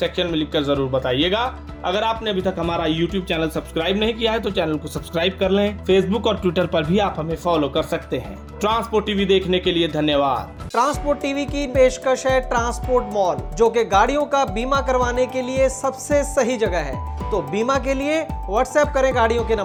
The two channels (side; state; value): both; identical; correlation 1.00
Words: में लिखकर जरूर बताइएगा। अगर आपने अभी तक हमारा YouTube चैनल सब्सक्राइब नहीं किया है तो चैनल को सब्सक्राइब कर लें। फेसबुक और ट्विटर पर भी आप हमें फॉलो कर सकते हैं। ट्रांसपोर्ट टीवी देखने के लिए धन्यवाद। ट्रांसपोर्ट टीवी की पेशकश है ट्रांसपोर्ट मॉल, जो कि गाड़ियों का बीमा करवाने के लिए सबसे सही जगह है। तो बीमा के लिए व्हाट्सएप करें गाड़ियों के